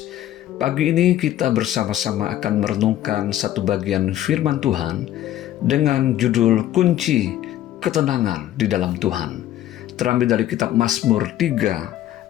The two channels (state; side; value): quieter; right; 12.9 dB